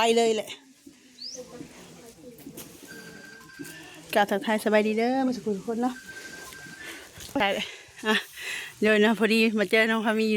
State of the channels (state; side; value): identical; both; correlation 1.00